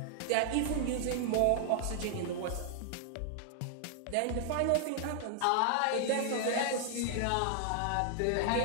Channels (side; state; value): both; different; correlation 0.00